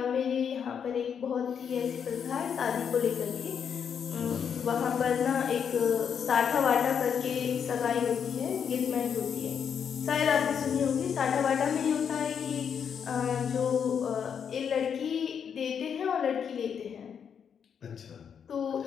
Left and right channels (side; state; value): right; quieter; 7.5 dB